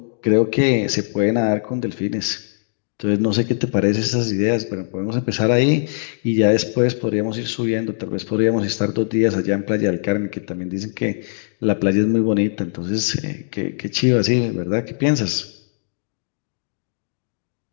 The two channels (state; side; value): silent; right; digital silence